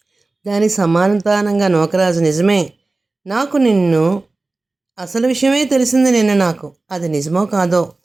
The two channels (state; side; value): quieter; left; 3.3 dB